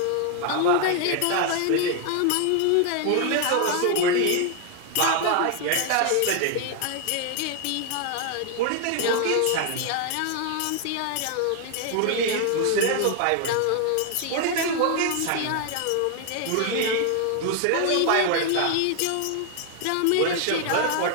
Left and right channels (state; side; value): different; both; correlation 0.00